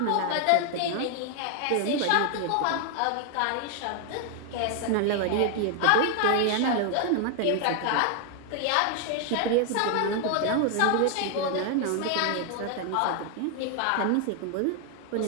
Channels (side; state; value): both; different; correlation 0.00